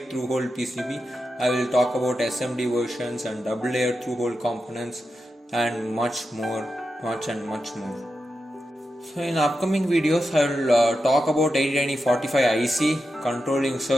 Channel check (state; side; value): normal; both; correlation 0.89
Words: through hole PCB. I will talk about SMD versions and double layer through hole components and much more. So in upcoming videos I will talk about 809045 IC, controlling